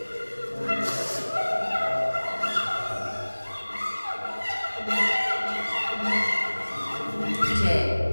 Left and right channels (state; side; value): inverted; both; correlation -1.00